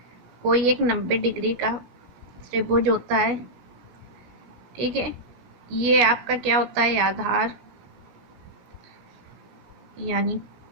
कोई एक 90 डिग्री का त्रिभुज होता है, ठीक है। ये आपका क्या होता है, आधार यानी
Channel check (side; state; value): left; late; 16 ms